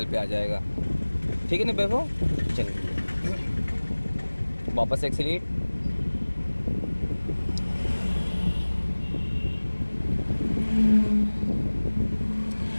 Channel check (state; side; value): inverted; both; correlation -1.00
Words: पे आ जाएगा, ठीक है ना वैभव। चलिए वापस एक्सीलेट,